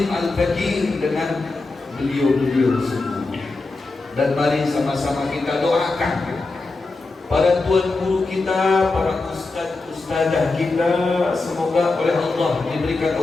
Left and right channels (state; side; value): quieter; right; 3.5 dB